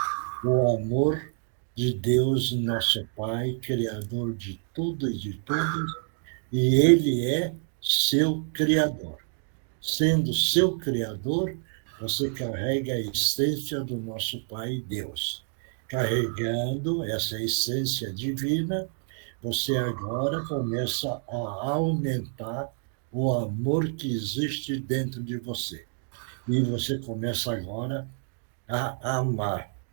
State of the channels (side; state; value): left; silent; 59 dB below the other